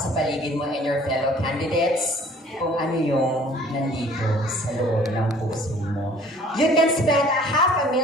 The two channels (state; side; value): normal; both; correlation 0.53